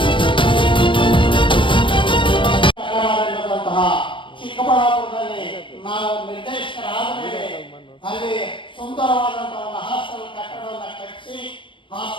ಚಿಕ್ಕಬಳ್ಳಾಪುರದಲ್ಲಿ ನಾವು ನಿರ್ದೇಶಕರಾದ ಮೇಲೆ ಅಲ್ಲಿ ಸುಂದರವಾದಂತಹ ಒಂದು ಹಾಸ್ಟೆಲ್ ಕಟ್ಟಡವನ್ನು ಕಟ್ಟಿಸಿ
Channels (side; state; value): right; late; 0.24 ms